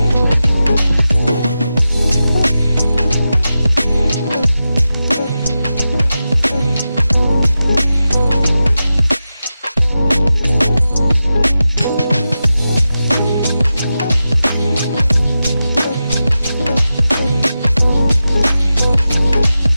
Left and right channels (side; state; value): both; inverted; correlation -0.92